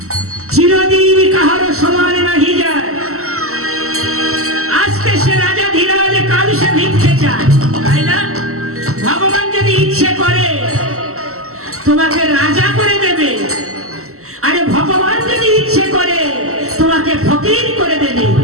চিরদিন কাহারও সমান নাহি যায়। আজকে সে রাজা ধীরাজ, কাল সে ভিক্ষে চায়, তাই না? ভগবান যদি ইচ্ছে করে তোমাকে রাজা করে দেবে, আরে ভগবান যদি ইচ্ছে করে তোমাকে ফকির করে দেবে।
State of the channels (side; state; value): left; late; 0.63 ms